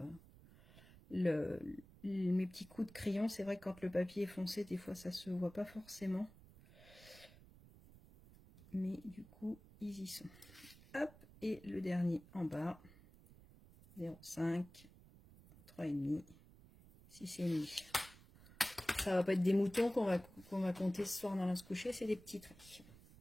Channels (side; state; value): right; noise; rumble, 21 dB below the sound